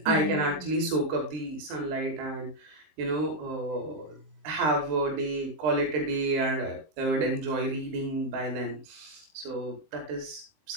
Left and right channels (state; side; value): late; left; 20 ms